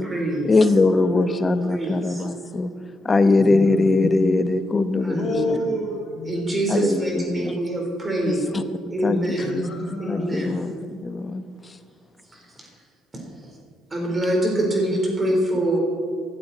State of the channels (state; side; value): normal; both; correlation 0.83